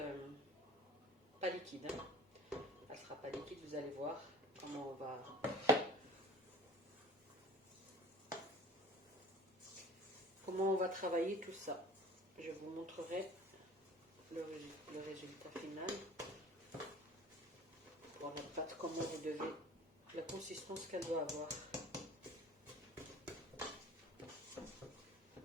pas liquide. Elle ne sera pas liquide, vous allez voir comment on va travailler tout ça. Je vous montrerai le résultat final. Pour la pâte, comment vous devez, la consistance qu'elle doit avoir.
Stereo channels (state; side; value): normal; both; correlation 0.42